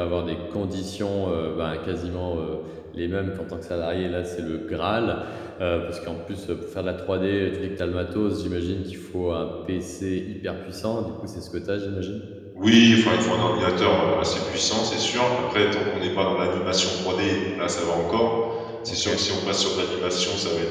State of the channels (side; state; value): both; identical; correlation 1.00